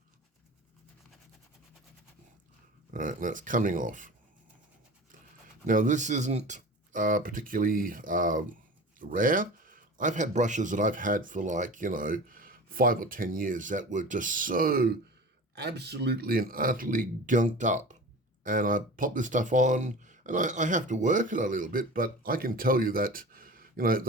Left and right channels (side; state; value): both; normal; correlation 0.36